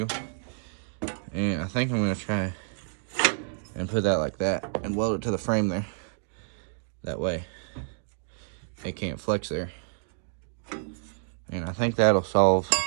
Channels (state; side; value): silent; left; 59 dB below the other